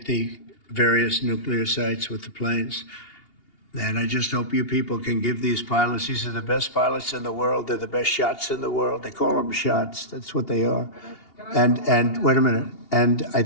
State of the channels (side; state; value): right; late; 2.8 ms